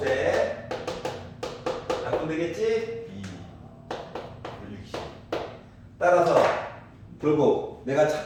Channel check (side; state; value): both; identical; correlation 1.00